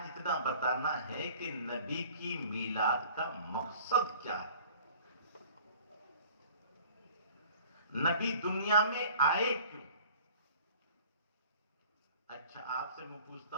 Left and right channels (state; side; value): inverted; both; correlation -0.48